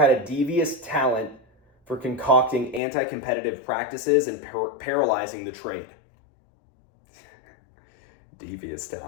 a devious talent for concocting anti-competitive practices and paralyzing the trade. Devious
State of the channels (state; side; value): drops out; right; at 2.8 s